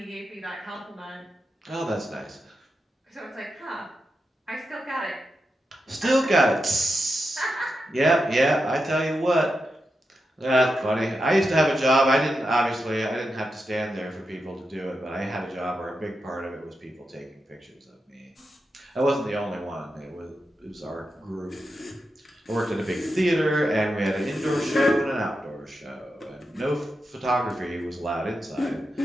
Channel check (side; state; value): both; normal; correlation 0.88